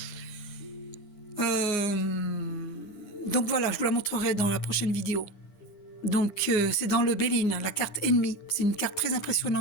Donc voilà, je vous la montrerai dans la prochaine vidéo. Donc c'est dans le Béline, la carte ennemie. C'est une carte très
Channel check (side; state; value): right; late; 8.7 ms